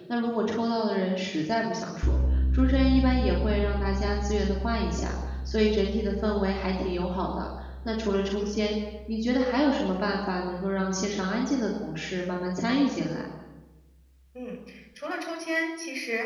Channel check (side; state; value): both; identical; correlation 1.00